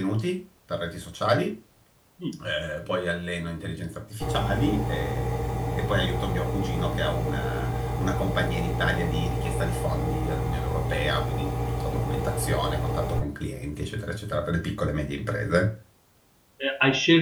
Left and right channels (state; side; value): identical; both; correlation 1.00